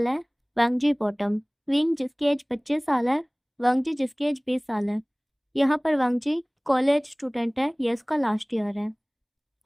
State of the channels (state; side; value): identical; both; correlation 1.00